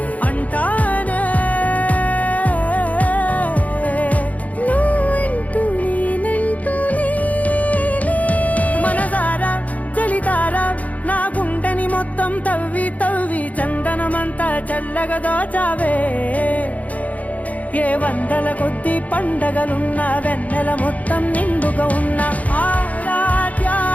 అంటానే నువ్వంటూ నేనంటూ లేనే. మనసారా చలితారా నా గుండెని మొత్తం తవ్వి తవ్వి చందనమంతా చల్లగా దోచావే. ఏ వందల కొద్ది పండగలున్నా వెన్నెల మొత్తం నిండుగా ఉన్న ఆరాధ్య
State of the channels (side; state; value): right; late; 0.072 ms